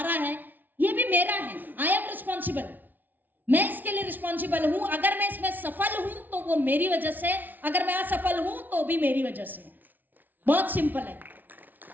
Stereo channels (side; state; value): left; late; 0.084 ms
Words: है? ये भी मेरा है। आई एम रिस्पॉन्सिबल, मैं इसके लिए रिस्पॉन्सिबल हूं। अगर मैं इसमें सफल हूं तो वो मेरी वजह से, अगर मैं असफल हूं तो भी मेरी वजह से। बहुत सिंपल है।